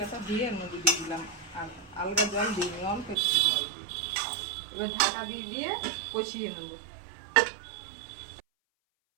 ধুয়ে এর মধ্যে দিয়ে দিলাম। আর আলগা জল দিইনি, অল্প একটু জল দিয়ে এবার ঢাকা দিয়ে দিয়ে কষিয়ে নেব।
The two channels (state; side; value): drops out; left; at 3.2 s